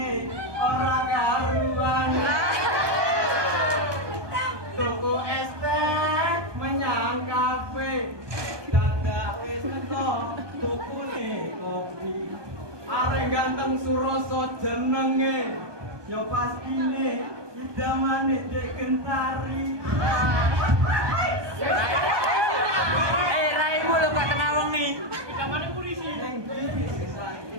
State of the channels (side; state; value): left; late; 1.2 ms